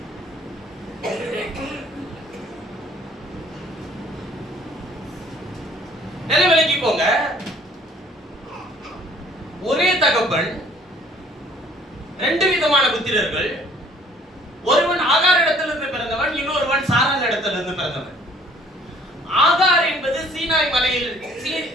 நிலைவிலக்கிக்கோங்க. ஒரே தகப்பன், ரெண்டு விதமான புத்திரர்கள். ஒருவன் ஆகார் இடத்திலிருந்து பிறந்தவன், இன்னொருவன் சாராள் இடத்திலிருந்து பிறந்தவன். ஆகார் என்பது சீனாய் மலையில்,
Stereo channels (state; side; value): normal; both; correlation 0.57